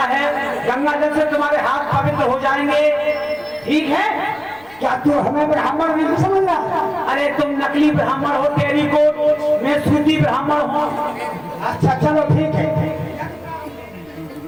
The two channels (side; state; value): left; noise; rumble, 29 dB below the sound